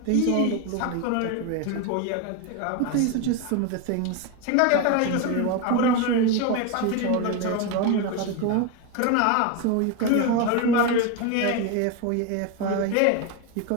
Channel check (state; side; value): different; both; correlation 0.02